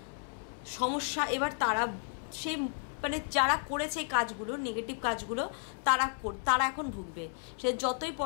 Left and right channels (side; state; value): right; silent; 56 dB below the other